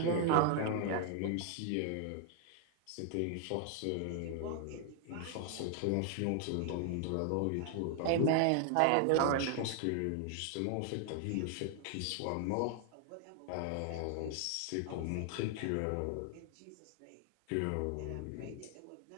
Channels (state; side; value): different; both; correlation 0.00